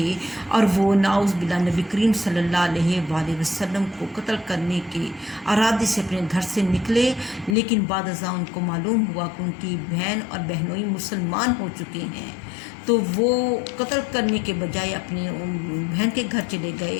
اور وہ نعوذ باللہ نبی کریم صلی اللہ علیہ وآلہ وسلم کو قتل کرنے کے ارادے سے اپنے گھر سے نکلے، لیکن بعد ازاں ان کو معلوم ہوا کہ ان کی بہن اور بہنوئی مسلمان ہو چکے ہیں، تو وہ قتل کرنے کے بجائے اپنی بہن کے گھر چلے گئے۔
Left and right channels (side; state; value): right; drops out; at 7.6 s